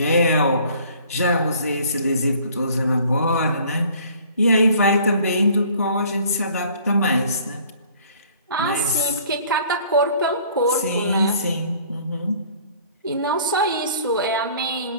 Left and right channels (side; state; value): both; inverted; correlation -0.54